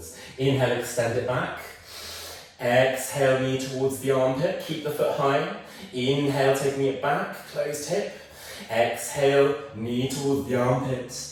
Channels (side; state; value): both; identical; correlation 1.00